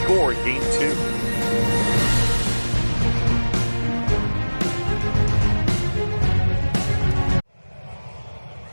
in game 2.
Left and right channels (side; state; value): both; inverted; correlation -1.00